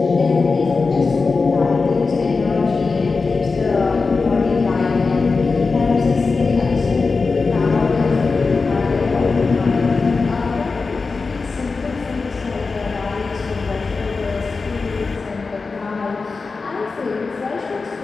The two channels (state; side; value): quieter; right; 4.3 dB